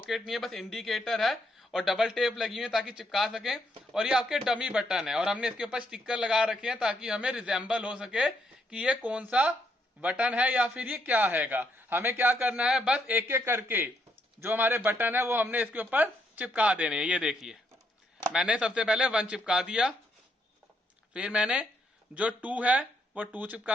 नहीं है, बस इंडिकेटर है और डबल टेप लगी हुई है ताकि चिपका सकें। और ये आपके डमी बटन है, और हमने इसके ऊपर स्टिकर लगा रखे हैं ताकि हमें रिजेंबल हो सके कि ये कौन सा बटन है या फिर ये क्या हैगा। हमें क्या करना है, बस एक एक करके जो हमारे बटन है वो हमने इसके ऊपर चिपका देने हैं। ये देखिए, मैंने सबसे पहले 1 चिपका दिया, फिर मैंने जो 2 है वो 2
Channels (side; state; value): both; normal; correlation 0.76